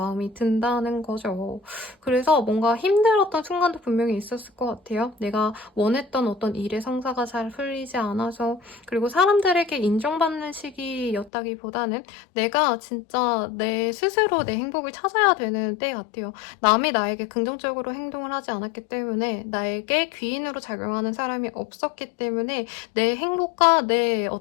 든다는 거죠. 그래서 뭔가 힘들었던 순간도 분명히 있었을 것 같아요. 내가 원했던 어떤 일의 성사가 잘 풀리지 않아서 그리고 사람들에게 인정받는 시기였다기보다는 내가 진짜 내 스스로 내 행복을 찾아야 되는 때 같아요. 남이 나에게 긍정적으로 행동을 하지 않았기 때문에 나에게 귀인으로 작용하는 사람이 없었기 때문에 내 행복과 내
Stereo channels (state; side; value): drops out; right; at 11.3 s